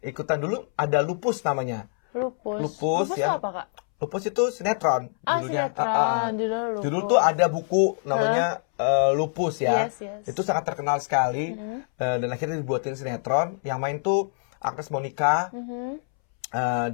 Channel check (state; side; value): silent; right; 62 dB below the other